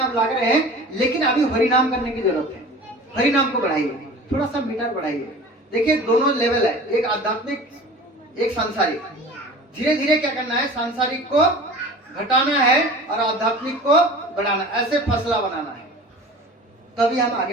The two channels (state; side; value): normal; both; correlation 0.40